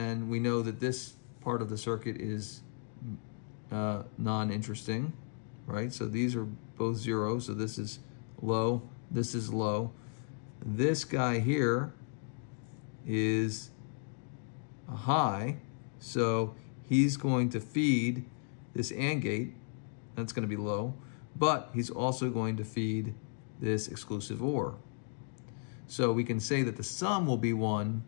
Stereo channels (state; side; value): silent; right; 55 dB below the other